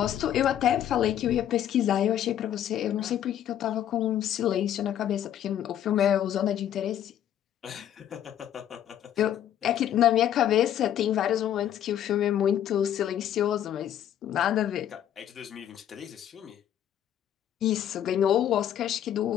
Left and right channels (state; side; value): quieter; right; 10.7 dB